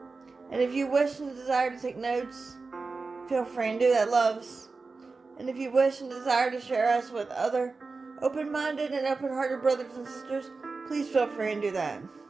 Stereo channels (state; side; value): quieter; left; 4.1 dB